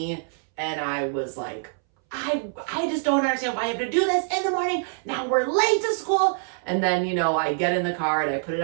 And I was like, I just don't understand why I have to do this in the morning. Now we're late to school. And then, I get in the car and I put it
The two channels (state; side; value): silent; left; 62 dB below the other